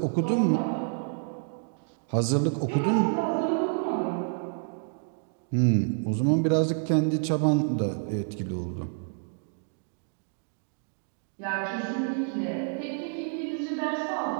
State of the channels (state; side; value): silent; left; 59 dB below the other